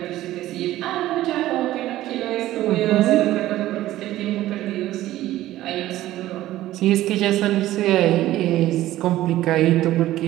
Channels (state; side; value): quieter; left; 14.9 dB